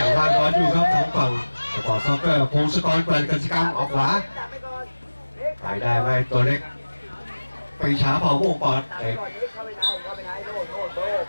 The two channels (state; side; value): inverted; both; correlation -1.00